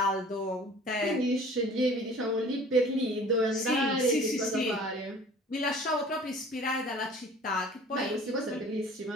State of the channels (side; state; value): both; normal; correlation 0.48